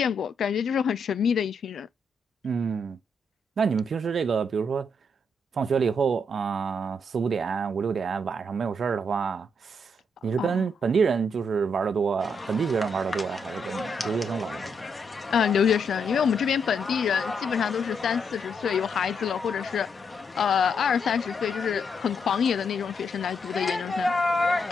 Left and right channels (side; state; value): both; normal; correlation 0.77